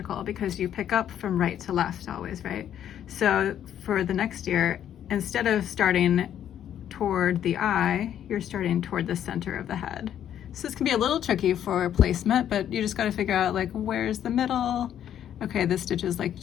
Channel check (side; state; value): right; quieter; 10.2 dB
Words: because you pick up from right to left always, right? So for the next ear, instead of starting toward the eye, you're starting toward the center of the head. So this can be a little tricky for placement, but you just got to figure out like where's the middle. Okay, this stitch is like